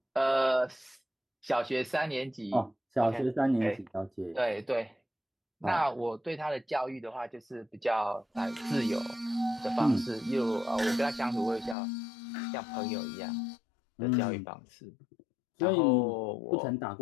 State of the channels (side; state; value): right; drops out; at 11.8 s